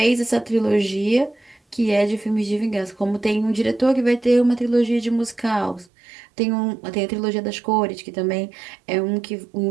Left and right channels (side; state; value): left; drops out; at 5.9 s